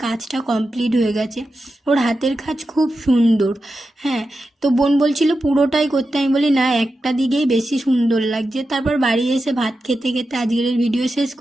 কাজটা কমপ্লিট হয়ে গেছে। ওর হাতের কাজ খুব সুন্দর। হ্যাঁ, তো বোন বলছিল পুরোটাই করতে, আমি বলি না, একটা দিকেই বেশি সুন্দর লাগছে। তারপর বাড়ি এসে ভাত খেতে খেতে আজকের ভিডিও শেষ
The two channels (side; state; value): both; normal; correlation 0.90